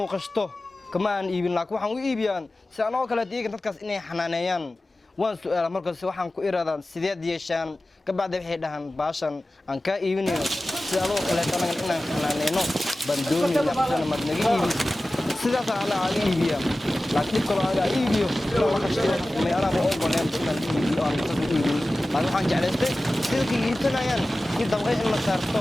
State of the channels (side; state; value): both; normal; correlation 0.96